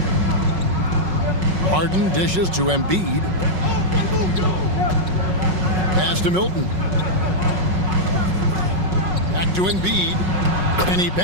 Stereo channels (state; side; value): late; left; 5.4 ms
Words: Harden dishes to Embiid. Pass to Milton. Back to Embiid. And he